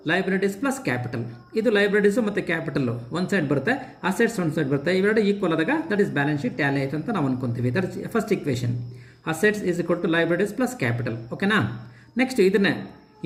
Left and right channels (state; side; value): identical; both; correlation 1.00